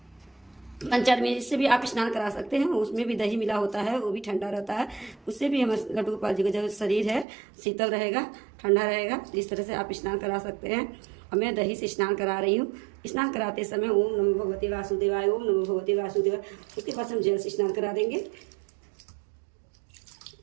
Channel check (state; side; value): drops out; left; at 7.2 s